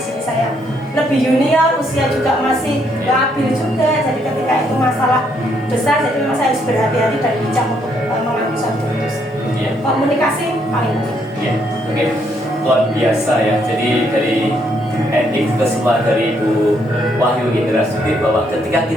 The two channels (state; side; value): normal; both; correlation 0.72